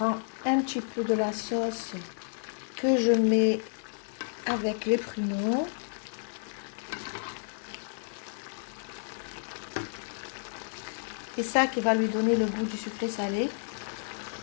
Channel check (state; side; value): silent; right; digital silence